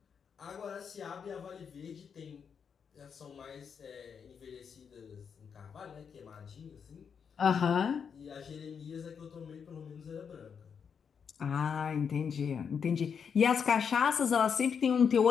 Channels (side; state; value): right; quieter; 6.8 dB